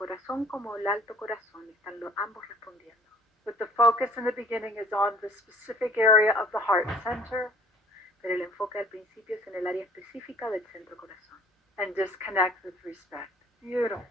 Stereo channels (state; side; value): normal; both; correlation 0.52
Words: como el alto corazón, están ambos respondiendo. But the focus in the beginning is on the specific area of the heart center. Pero el enfoque al principio es en el área específica del centro corazón. And disconnect with respect.